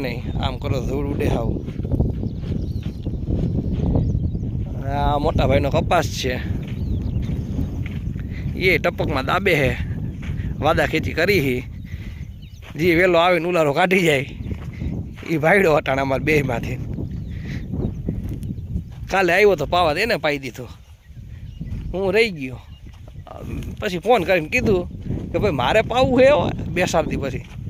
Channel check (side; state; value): both; identical; correlation 1.00